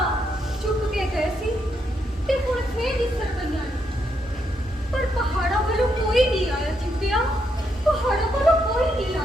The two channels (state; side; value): normal; both; correlation 0.79